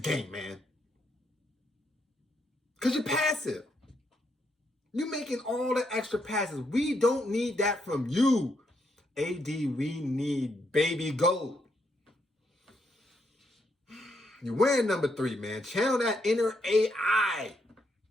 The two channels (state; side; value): normal; both; correlation 0.77